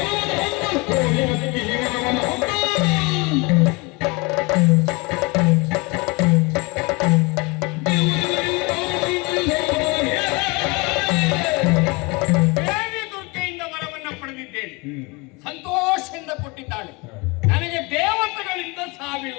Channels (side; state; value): right; quieter; 27.2 dB